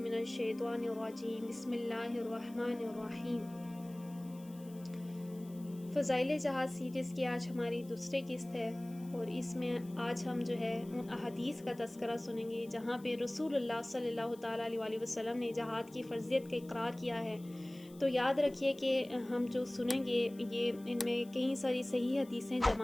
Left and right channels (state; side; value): noise; left; hiss, 24 dB below the sound